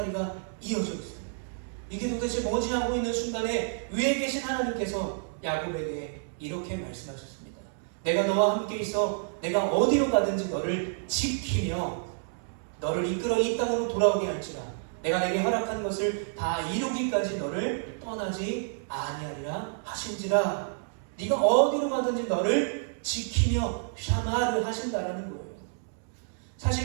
이어져 있어요. 이게 도대체 뭐지 하고 있는 순간에 위에 계신 하나님께서 야곱에게 이렇게 말씀하셨습니다. 내가 너와 함께 있어 내가 어디로 가든지 너를 지키며 너를 이끌어 이 땅으로 돌아오게 할지라 내가 내게 허락한 것을 다 이루기까지 너를 떠나지 아니하리라 하신지라. 네가 어디로 가든지 너를 지키며 샤마를 하신다라는 거예요.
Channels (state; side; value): silent; left; digital silence